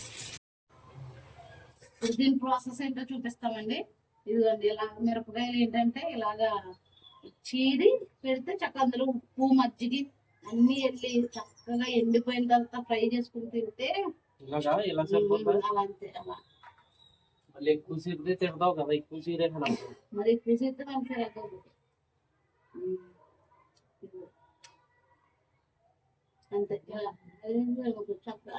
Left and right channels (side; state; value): both; identical; correlation 1.00